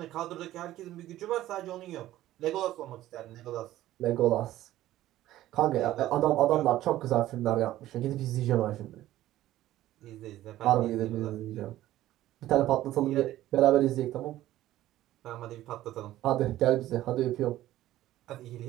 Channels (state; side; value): quieter; left; 14.5 dB